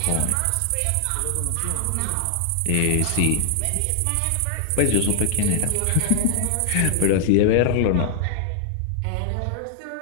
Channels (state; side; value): different; both; correlation -0.01